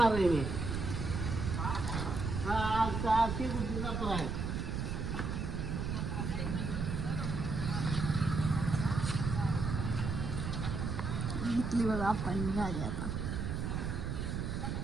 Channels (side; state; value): right; noise; rumble, 2 dB below the sound